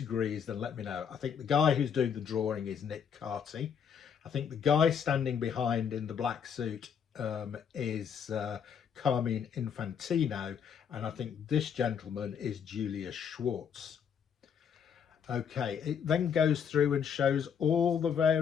then let me know. I think the guy who's doing the drawing is Nick Carty. I think the guy standing behind in the black suit is Carmine Infantino, and I think this gentleman is Julius Schwartz. Okay, it then goes through and shows all the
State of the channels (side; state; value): right; quieter; 7.5 dB